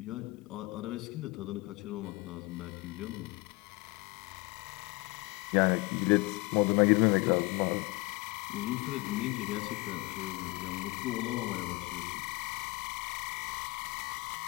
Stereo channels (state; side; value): quieter; right; 24.4 dB